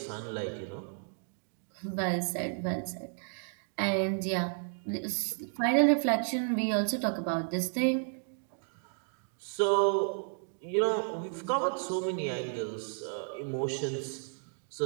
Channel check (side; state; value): left; silent; 56 dB below the other